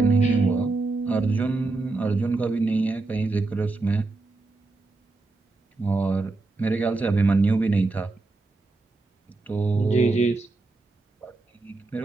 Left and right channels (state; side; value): quieter; left; 3.4 dB